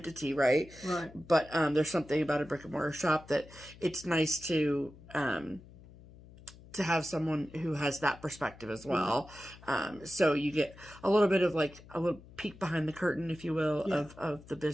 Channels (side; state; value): left; noise; hum, 21 dB below the sound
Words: right? Right. But there's something about a brick and mortar shop that it's nice to have someone who has that perspective as well. So you get a little bit of like a little peek behind the curtain, if you will, of the